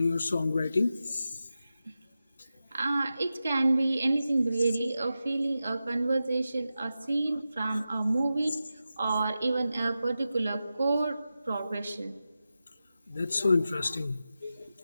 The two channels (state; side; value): inverted; both; correlation -0.92